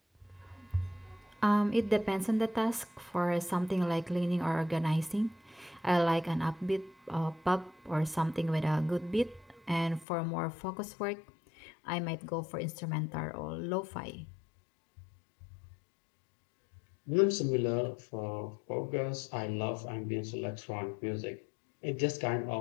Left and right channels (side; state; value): right; drops out; at 10.1 s